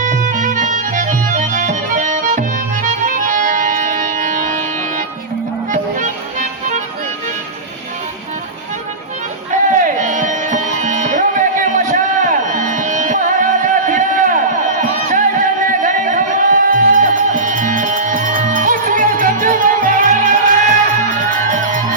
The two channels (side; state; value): left; quieter; 3.1 dB